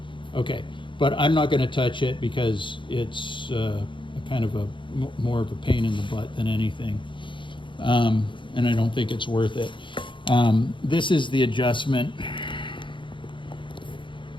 Okay, but I'm not going to touch it because it's kind of more of a pain in the butt than anything, and I don't think it's worth it. This is the adjustment.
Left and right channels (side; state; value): right; late; 0.24 ms